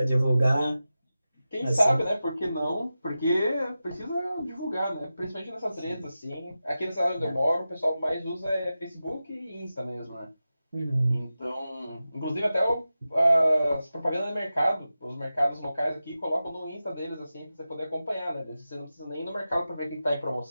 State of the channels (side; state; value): both; inverted; correlation -0.93